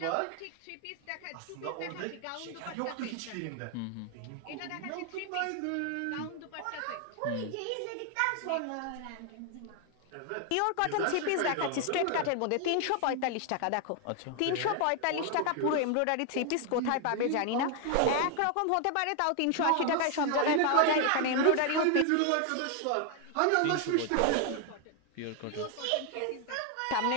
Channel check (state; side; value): different; both; correlation 0.00